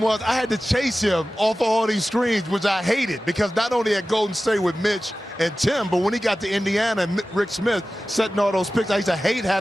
I had to chase him off of all these screens, which I hated, because not only at Golden State with Mitch and Tim, but when he got to Indiana and Rick Smith setting all those picks, I used to hate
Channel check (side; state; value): both; normal; correlation 0.95